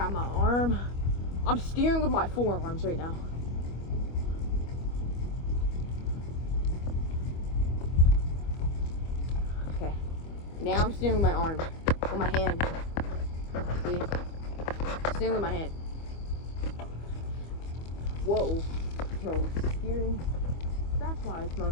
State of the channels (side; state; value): right; late; 25 ms